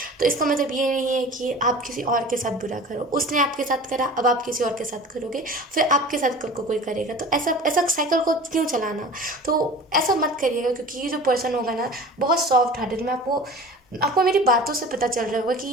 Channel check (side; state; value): both; normal; correlation 0.39